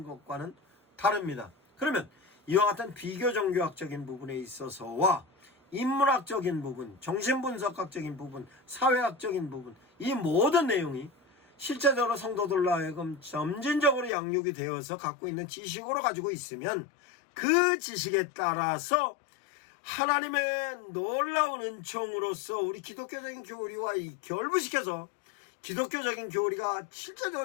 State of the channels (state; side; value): drops out; right; at 14.1 s